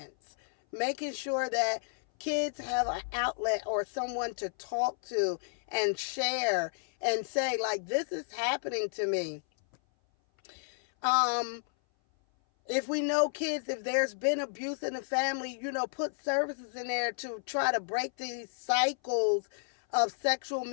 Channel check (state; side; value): silent; right; 57 dB below the other